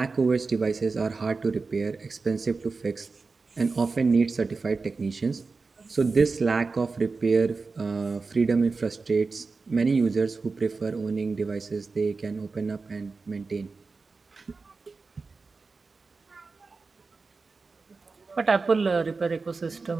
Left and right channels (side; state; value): left; quieter; 4.2 dB